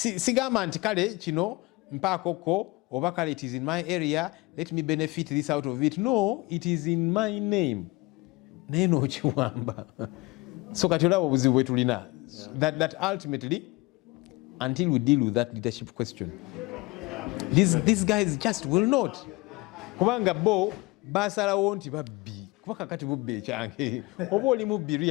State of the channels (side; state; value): right; quieter; 23.5 dB